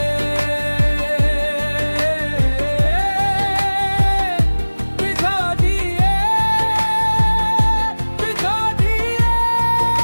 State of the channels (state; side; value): inverted; both; correlation -1.00